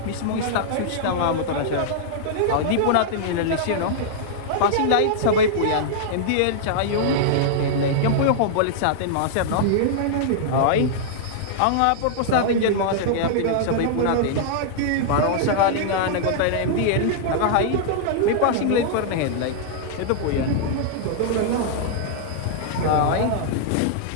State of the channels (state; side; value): different; both; correlation -0.01